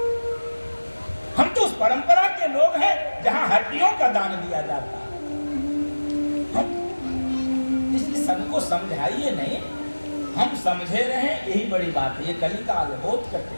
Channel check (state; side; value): inverted; both; correlation -1.00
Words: हम तो उस परंपरा के लोग हैं जहां हड्डियों का दान दिया जाता है। इसलिए सबको समझाइए नहीं, हम समझे रहे, यही बड़ी बात है। ये कलिकाल है, बहुत